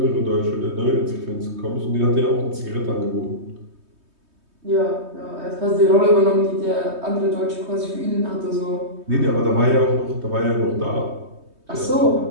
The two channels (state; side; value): late; left; 3.2 ms